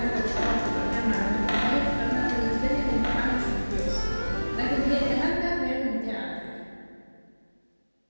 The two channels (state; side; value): inverted; both; correlation -1.00